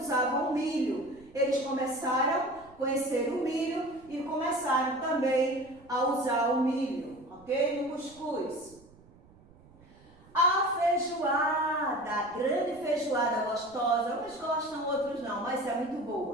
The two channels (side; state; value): right; noise; rumble, 26 dB below the sound